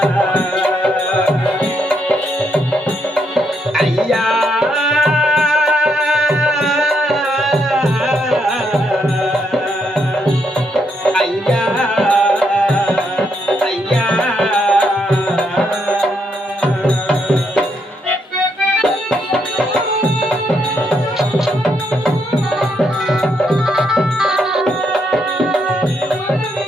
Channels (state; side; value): normal; both; correlation 0.76